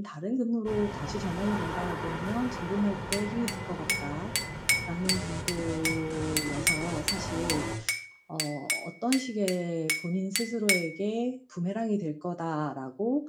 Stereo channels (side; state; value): both; identical; correlation 1.00